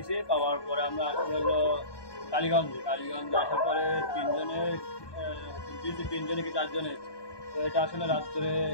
পাওয়ার পরে আমরা হলো কালীগঞ্জে আসার পরে তিনজনে কি 4জনে। তো এটা আসলে রাত্রে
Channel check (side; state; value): right; late; 1.2 ms